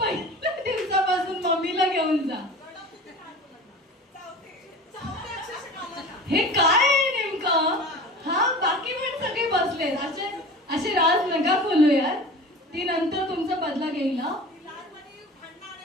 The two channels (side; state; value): both; normal; correlation 0.37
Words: दिवसापासून मम्मीला घेऊन जा. हे काय आहे नेमकं? हा, बाकी पण सगळे बसले असे राज नका बोलू यार. ती नंतर तुमचा बदला घेईल ना.